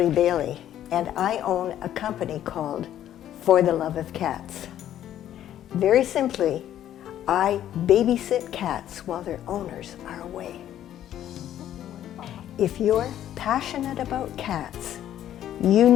Bailey, and I own a company called For the Love of Cats. Very simply, I babysit cats while their owners are away. If you're passionate about cats, you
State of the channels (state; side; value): quieter; right; 11.5 dB